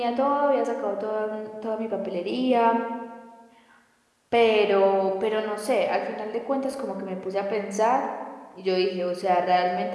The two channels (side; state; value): both; identical; correlation 1.00